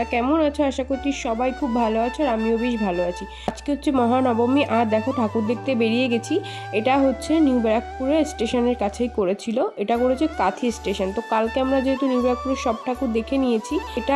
কেমন আছো? আশা করছি সবাই খুব ভালো আছো, আর আমিও বেশ ভালো আছি। আজকে হচ্ছে মহানবমী, আর দেখো ঠাকুর দেখতে বেরিয়ে গেছি। এটা হচ্ছে নিউ ব্যারাকপুরের স্টেশনের কাছেই করেছিল, এটা করেছে কাঁথি স্টেশন। তো কালকে আমরা যেহেতু নিউ ব্যারাকপুরের সব ঠাকুর দেখে নিয়েছি, এটা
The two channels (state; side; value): identical; both; correlation 1.00